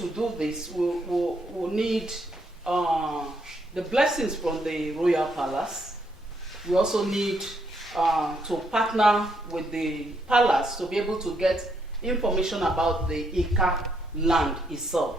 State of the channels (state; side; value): normal; both; correlation 0.75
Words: do this, we'll need the blessings from the Royal Palace. We also need to partner with the palace to be able to get information about the Ika land